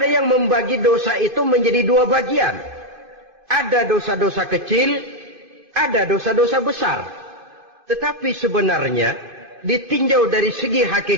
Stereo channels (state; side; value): late; left; 2.5 ms